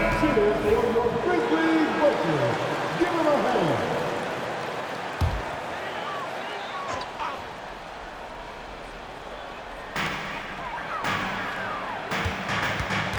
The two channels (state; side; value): identical; both; correlation 1.00